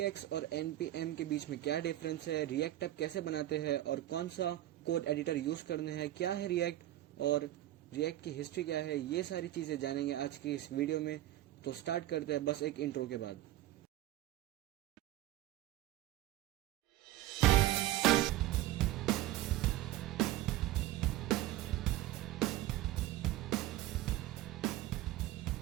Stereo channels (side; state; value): left; quieter; 14.6 dB